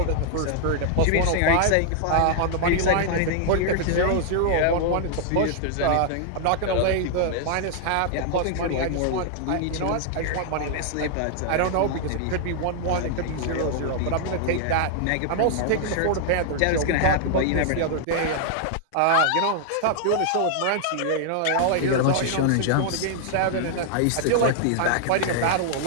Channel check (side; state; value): both; different; correlation -0.01